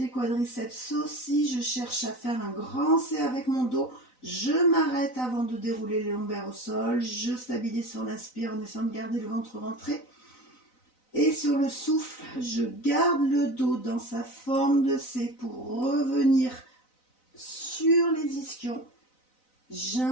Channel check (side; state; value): right; late; 4.0 ms